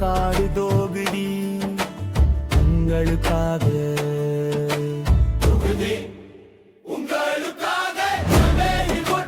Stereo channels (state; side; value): identical; both; correlation 1.00